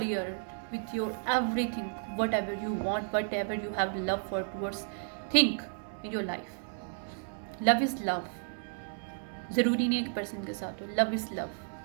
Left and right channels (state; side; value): silent; left; 56 dB below the other